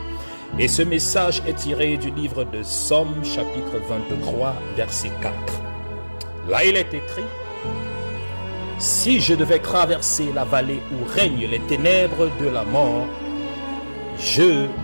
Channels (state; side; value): inverted; both; correlation -1.00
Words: Et ce message est tiré du livre de Somme, chapitre 23, verset 4. Là, il est écrit: « Si je devais traverser la vallée où règnent les ténèbres de la mort, je